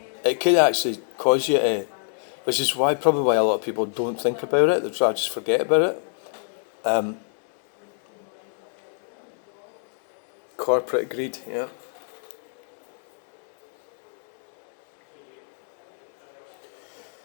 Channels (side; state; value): right; silent; digital silence